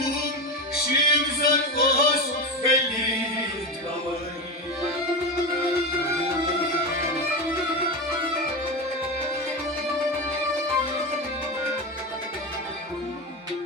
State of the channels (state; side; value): normal; both; correlation 0.19